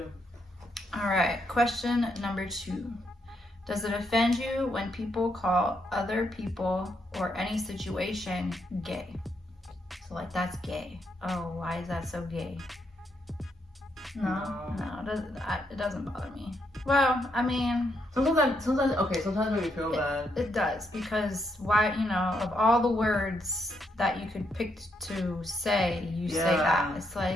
All right, question number 2. Does it offend you when people call other people or any situation gay? So like, that's gay. Oh, why is that so gay? No, it doesn't bother me. Well, I mean... Sometimes it makes me feel bad. It does, because why, of all the words that you could pick to say, say that. It's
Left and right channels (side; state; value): both; normal; correlation 0.77